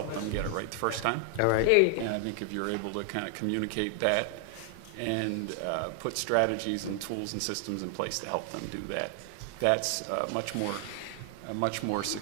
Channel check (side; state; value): both; different; correlation 0.00